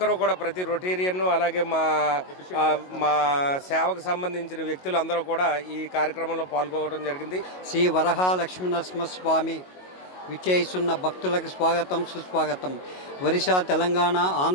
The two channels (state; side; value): late; right; 22 ms